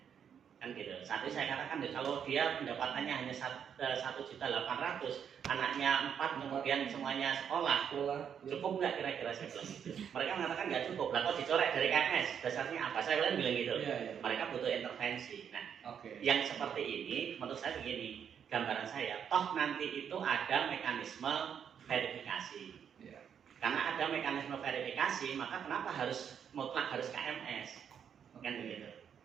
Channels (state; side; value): quieter; left; 8.0 dB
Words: kan gitu. Saat itu saya katakan kalau dia pendapatannya hanya 1.800.000, anaknya 4, kemudian semuanya sekolah, cukup nggak kira-kira saya bilang gitu. Mereka mengatakan nggak cukup, lah kok dicoret dari KMS, dasarnya apa? Saya bilang gitu. Mereka butuh intervensi. Nah, yang seperti ini menurut saya begini, gambaran saya, toh nanti itu ada mekanisme verifikasi. Karena ada mekanisme verifikasi, maka kenapa mutlak harus KMS? Kan begitu.